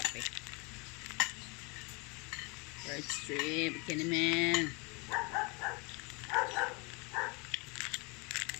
Bird Street. Kinimen.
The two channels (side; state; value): right; quieter; 29.7 dB